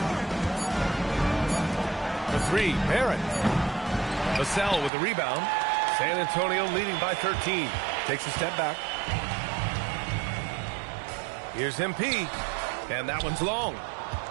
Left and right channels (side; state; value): left; drops out; at 4.9 s